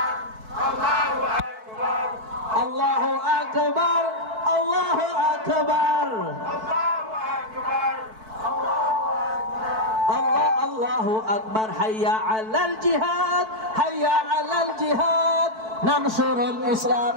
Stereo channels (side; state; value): left; late; 4.6 ms